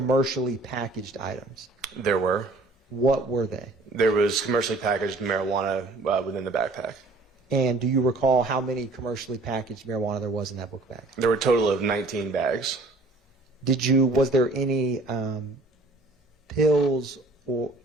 packaged items? There were. What were they? There was commercially packaged marijuana within the backpack. And do you recall how many commercially packaged marijuana there was in that book bag? There were a total of 19 bags. Was there any pills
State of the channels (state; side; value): quieter; left; 3.1 dB